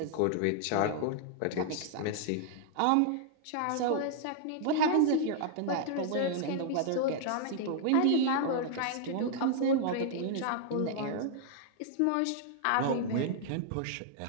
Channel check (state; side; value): different; both; correlation -0.01